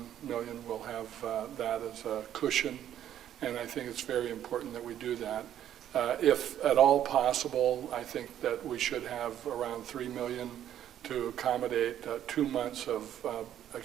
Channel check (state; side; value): quieter; left; 10.9 dB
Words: million. We'll have that as a cushion, and I think it's very important that we do that. If at all possible, I think that we should have around $3 million to accommodate 2 months of